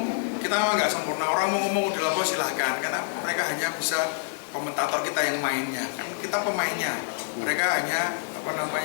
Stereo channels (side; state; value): right; silent; digital silence